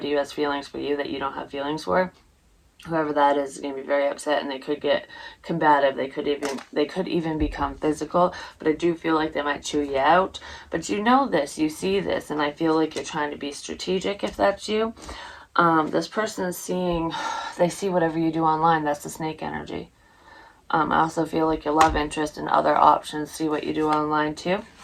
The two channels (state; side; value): identical; both; correlation 1.00